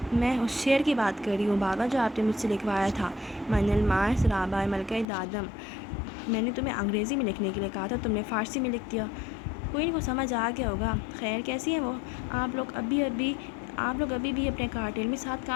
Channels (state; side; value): drops out; right; at 5.1 s